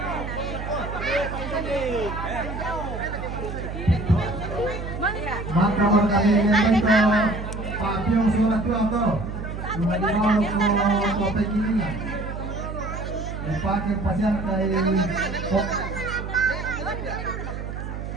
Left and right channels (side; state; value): right; noise; hum, 7 dB below the sound